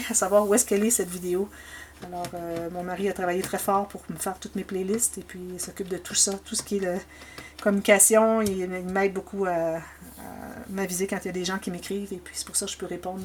à savoir où est-ce qu'elle est, cette vidéo. Alors, mon mari a travaillé très fort pour me faire toutes mes playlists. Et puis, il s'occupe de tout ça, tout ce qui est communication. Il m'aide beaucoup à m'aviser quand il y a des gens qui m'écrivent. Et puis, c'est pour ça que je peux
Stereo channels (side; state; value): both; identical; correlation 1.00